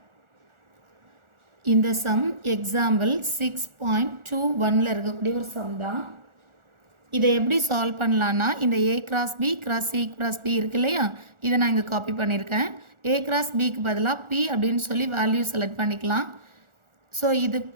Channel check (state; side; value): late; left; 1.4 ms